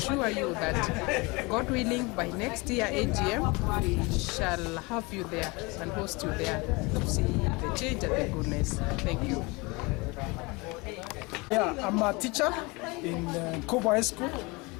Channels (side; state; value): right; quieter; 26.1 dB